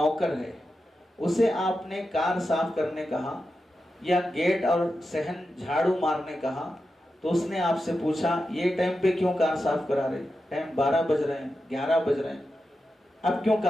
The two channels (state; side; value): normal; both; correlation 0.90